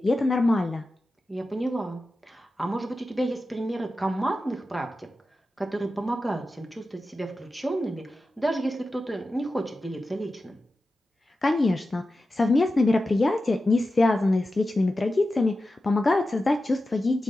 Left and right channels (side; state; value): both; normal; correlation 0.92